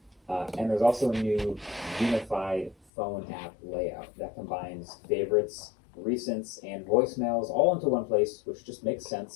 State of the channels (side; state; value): right; drops out; at 2.8 s